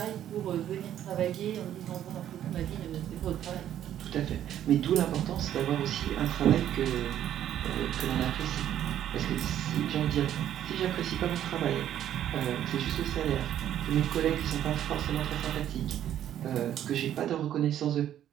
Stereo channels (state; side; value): quieter; left; 11.1 dB